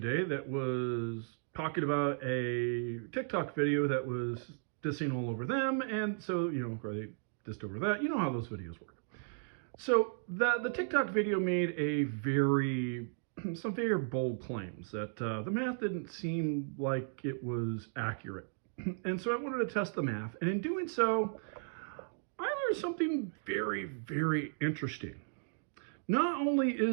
that was talking about a TikTok video that was dissing all over them, and so or they dissed over that. You know how those videos work. So the TikTok video made some very bold claims that the math didn't seem like it was accurate, and so I wanted to test the math, and in doing so, I learned something very, very interesting. Not only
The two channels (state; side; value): silent; left; digital silence